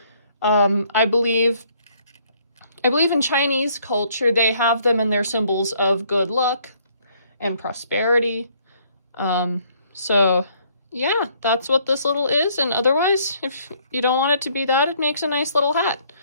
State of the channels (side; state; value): both; inverted; correlation -0.65